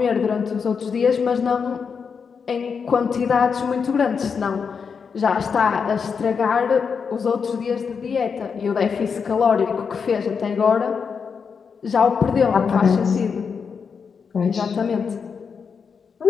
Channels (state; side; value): quieter; right; 6.0 dB